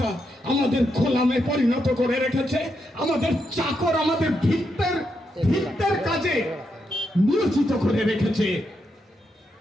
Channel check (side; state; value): both; normal; correlation 0.82